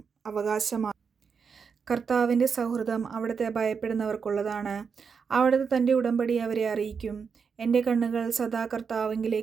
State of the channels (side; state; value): left; quieter; 6.0 dB